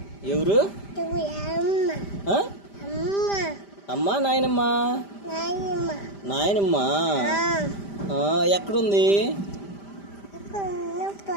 ఎవరు? అమ్మా నాయనమ్మా? నాయనమ్మా ఎక్కడుంది?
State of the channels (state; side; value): late; right; 5.0 ms